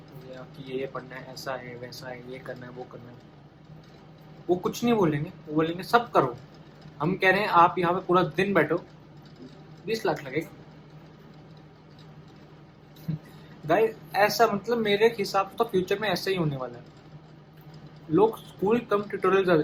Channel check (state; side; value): identical; both; correlation 1.00